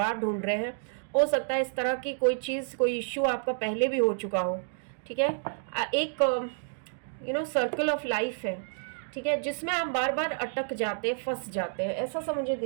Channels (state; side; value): silent; left; digital silence